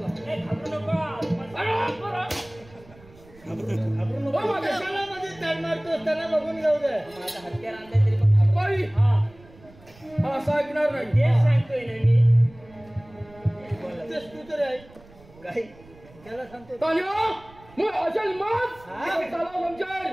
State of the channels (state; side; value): noise; right; rumble, 24 dB below the sound